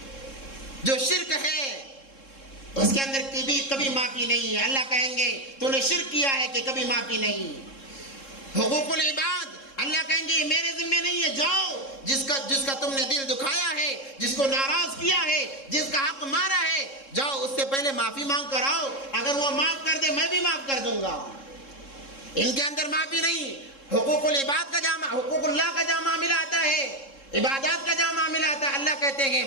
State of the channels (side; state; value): right; late; 3.7 ms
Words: جو شرک ہے اس کے اندر کبھی معافی نہیں ہے۔ اللہ کہیں گے تو نے شرک کیا ہے کہ کبھی معافی نہیں۔ حقوق العباد اللہ اللہ کہیں گے یہ میرے ذمہ نہیں ہے، جاؤ جس کا تم نے دل دکھایا ہے، جس کو ناراض کیا ہے، جس کا حق مارا ہے، جاؤ اس سے پہلے معافی مانگ کر آؤ، اگر وہ معاف کر دے میں بھی معاف کر دوں گا۔ ان کے اندر معافی نہیں، حقوق العباد کا جامع، حقوق اللہ کا جامع معاملہ آتا ہے، عبادات کا جامع معاملہ آتا ہے۔ اللہ کہتے ہیں